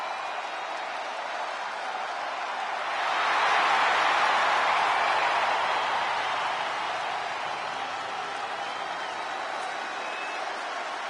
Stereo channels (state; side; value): identical; both; correlation 1.00